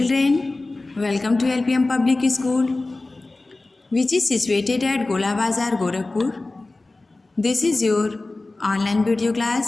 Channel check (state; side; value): quieter; right; 3.1 dB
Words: welcome to LPM Public School, which is situated at Gola Bazar, Gorakhpur. This is your online video